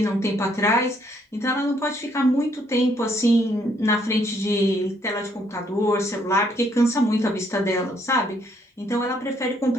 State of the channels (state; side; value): normal; both; correlation 0.69